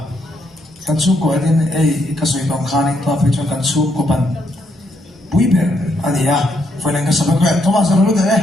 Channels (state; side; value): normal; both; correlation 0.75